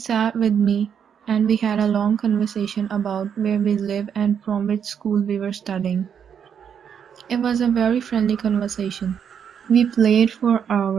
with me and we had a long conversation about where we live and from which school we were studying. It was a very friendly conversation. We played for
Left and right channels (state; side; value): quieter; left; 7.8 dB